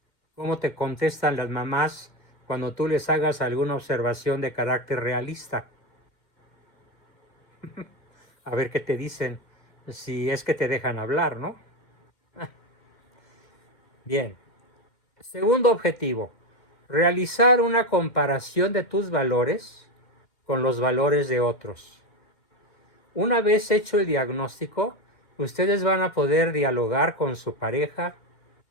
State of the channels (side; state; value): right; late; 2.1 ms